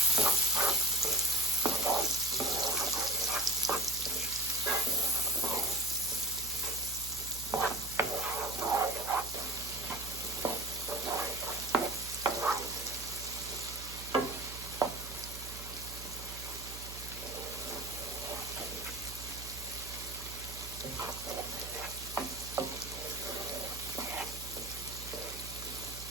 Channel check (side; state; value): right; noise; hum, 11 dB below the sound